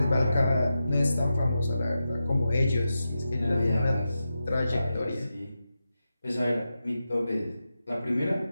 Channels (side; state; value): both; inverted; correlation -0.90